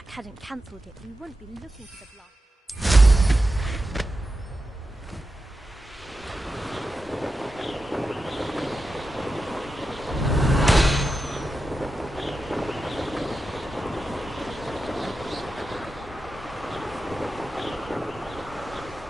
hadn't cancelled it, we wouldn't be looking for the block.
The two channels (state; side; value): normal; both; correlation 0.90